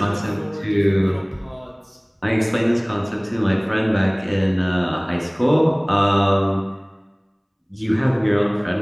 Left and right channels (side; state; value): both; identical; correlation 1.00